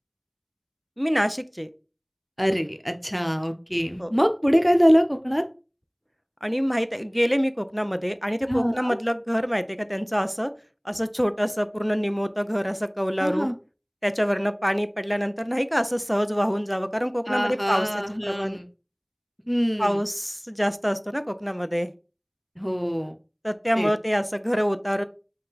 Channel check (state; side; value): identical; both; correlation 1.00